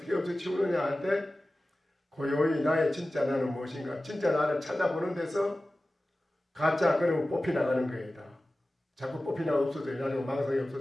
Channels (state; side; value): normal; both; correlation 0.96